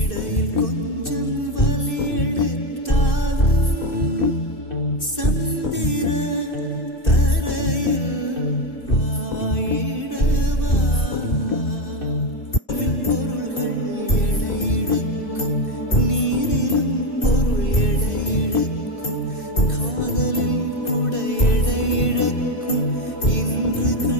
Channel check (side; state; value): right; late; 2.6 ms